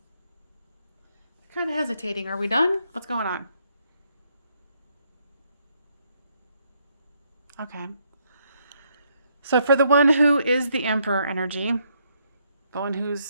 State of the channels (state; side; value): inverted; both; correlation -0.73